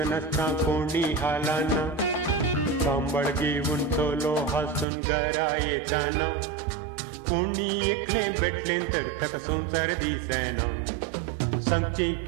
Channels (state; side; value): drops out; left; at 4.9 s